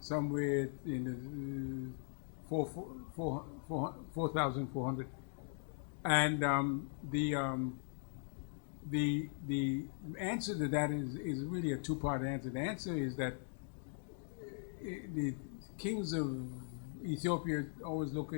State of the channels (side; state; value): right; silent; digital silence